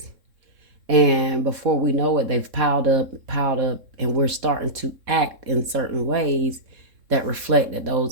And before we know it, they've piled up, and we're starting to act in certain ways that reflect that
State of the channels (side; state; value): left; late; 3.7 ms